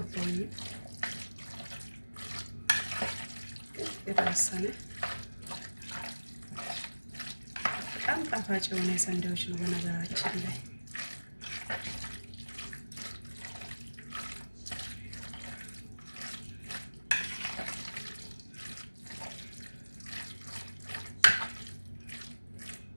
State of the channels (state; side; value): inverted; both; correlation -1.00